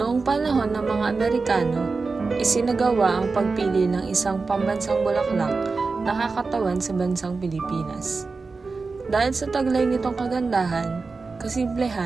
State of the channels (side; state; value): left; quieter; 4.2 dB